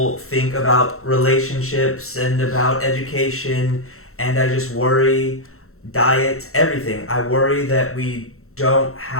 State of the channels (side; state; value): right; late; 0.63 ms